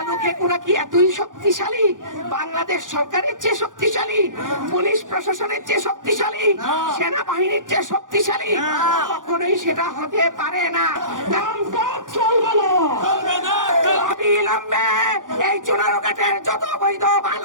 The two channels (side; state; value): left; late; 0.88 ms